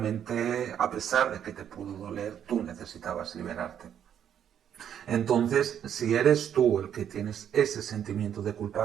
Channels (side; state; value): left; quieter; 9.3 dB